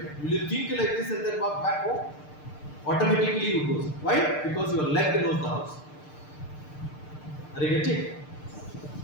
Will you think like this and then walk back home? Automatically you go. Why? Because your leg knows the house. Are you getting?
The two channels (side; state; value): right; late; 6.7 ms